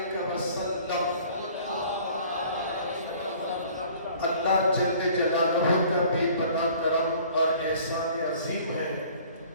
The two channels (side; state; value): both; inverted; correlation -0.51